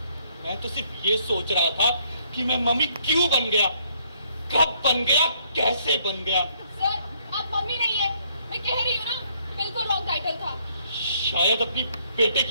मैं तो सिर्फ ये सोच रहा था कि मैं मम्मी क्यों बन गया, कब बन गया, कैसे बन गया। सर, आप मम्मी नहीं है, मैं कह रही हूँ ना, बिल्कुल रॉन्ग टाइटल था। शायद अपनी बेटे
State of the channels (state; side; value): inverted; both; correlation -0.65